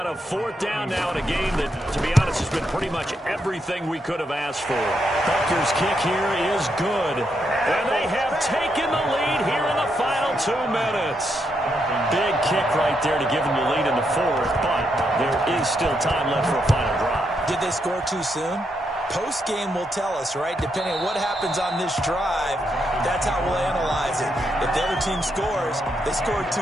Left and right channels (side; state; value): both; normal; correlation 0.80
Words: a fourth down now in a game that, to be honest, has been pretty much everything we could have asked for. Butker's kick here is good. And they have taken the lead here in the final 2 minutes. Big kick right there to give them the lead in the fourth, but there is still time left for a final drive. Did they score too soon? Post-game will tell us, right? Depending on what happens on this drive, that's how we'll analyze it. If the other team scores, they scored